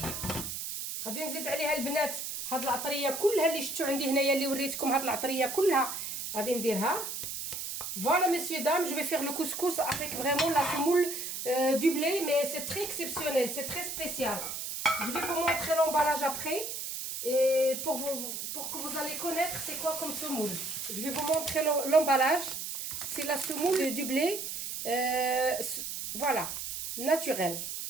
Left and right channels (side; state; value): right; noise; hiss, 5 dB below the sound